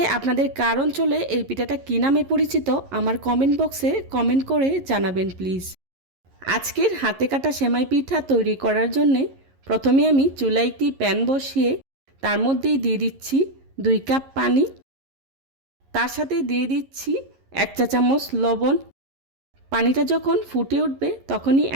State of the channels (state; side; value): late; left; 11 ms